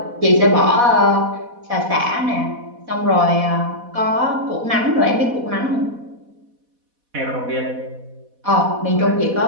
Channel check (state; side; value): late; left; 4.1 ms